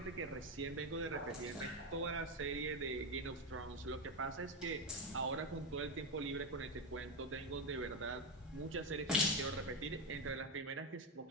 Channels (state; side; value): normal; both; correlation 0.11